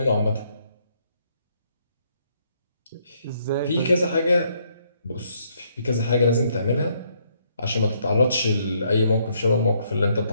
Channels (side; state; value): both; inverted; correlation -0.71